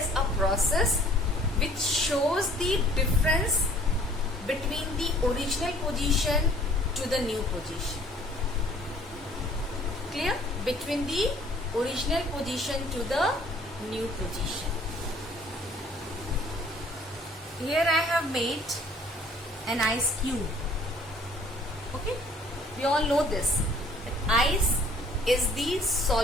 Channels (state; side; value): normal; both; correlation 0.56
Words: a process which shows the difference between the original position to the new position. Clear? Between the original position to the new position. Here I have made an ice cube. Okay, we all know this. Ice is the